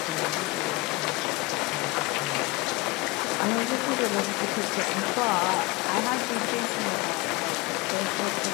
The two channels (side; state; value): right; quieter; 22.4 dB